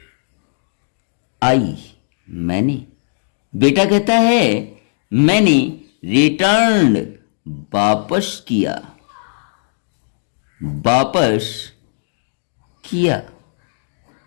आई मैंने, बेटा कहता है मैंने रिटर्न वापस किया, वापस किया,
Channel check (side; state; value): right; silent; digital silence